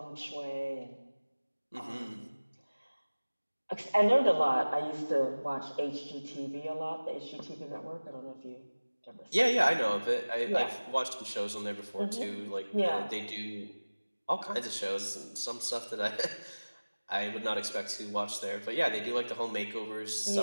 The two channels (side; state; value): both; inverted; correlation -1.00